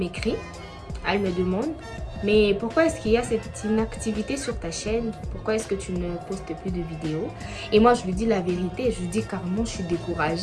elle me demande: mais pourquoi est-ce qu'il y a cette inactivité sur ta chaîne? Pourquoi est-ce que tu ne postes plus de vidéos? Et moi, je lui dis la vérité. Je lui dis carrément, je suis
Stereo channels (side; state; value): both; identical; correlation 1.00